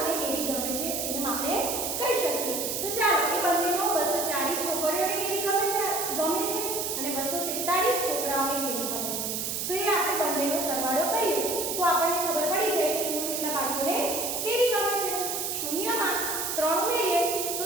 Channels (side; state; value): right; noise; hiss, 2 dB below the sound